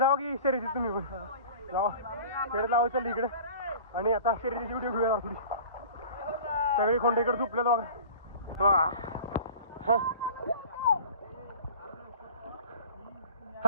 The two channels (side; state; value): both; inverted; correlation -0.41